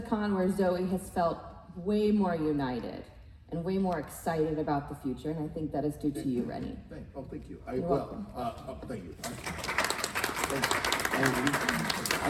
con where Zoe has felt way more united and way more excited about the future, and I think that is due to you, Rennie. Thank you. You're welcome. Thank you.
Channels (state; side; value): identical; both; correlation 1.00